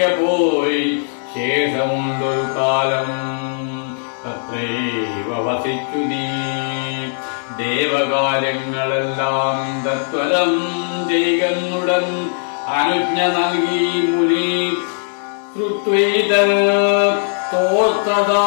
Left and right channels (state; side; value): silent; right; digital silence